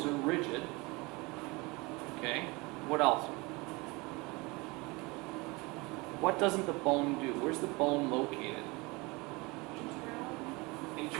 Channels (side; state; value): left; quieter; 25.2 dB